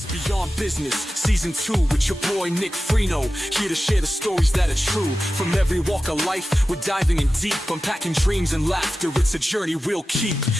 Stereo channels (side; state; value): both; normal; correlation 0.94